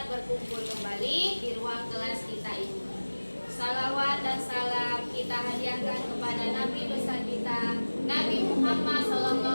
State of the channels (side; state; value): both; inverted; correlation -1.00